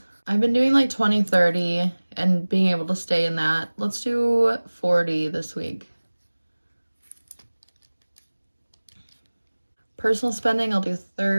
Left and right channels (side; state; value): both; inverted; correlation -1.00